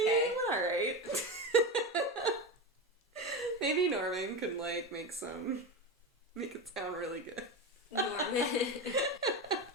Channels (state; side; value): normal; both; correlation 0.20